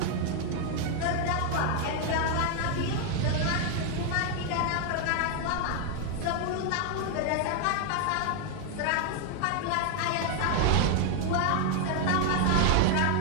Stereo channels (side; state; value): both; different; correlation 0.00